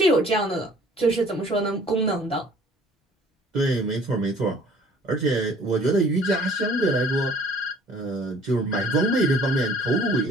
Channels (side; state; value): both; normal; correlation 0.54